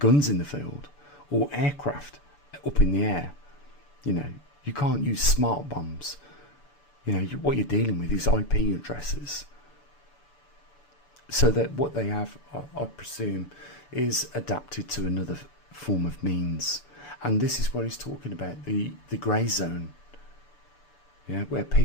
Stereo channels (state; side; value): late; right; 6.9 ms